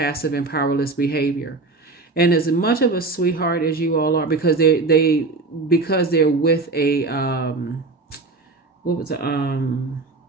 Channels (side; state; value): left; quieter; 3.6 dB